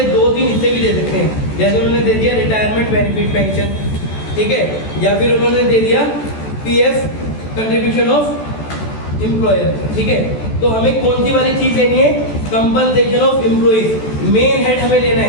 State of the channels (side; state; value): right; late; 14 ms